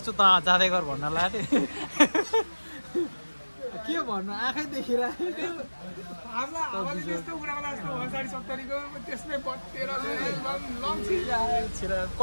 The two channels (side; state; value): both; inverted; correlation -1.00